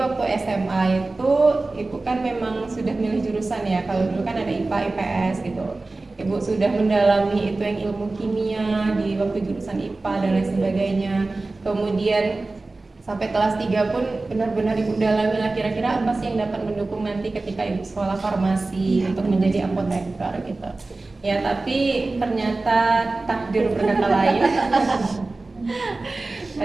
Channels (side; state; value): left; quieter; 3.3 dB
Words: SMA itu ibu kan memang sudah milih jurusan ya. Kalau dulu kan ada IPA, IPS gitu. Ibu sudah mendalami itu yang ilmu kimia di waktu jurusan IPA dan lain sebagainya. Kemudian sampai kelas 3 pun benar-benar ibu dalami lah kira-kira apa sih yang dapat mendukung nanti ketika ibu sekolah farmasi untuk menjadi apoteker gitu. Ya, tapi ternyata takdir berkata lain.